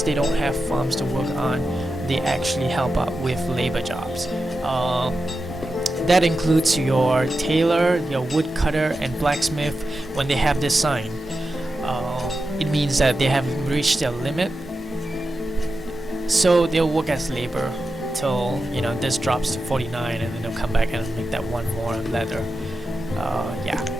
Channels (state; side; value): normal; both; correlation 0.90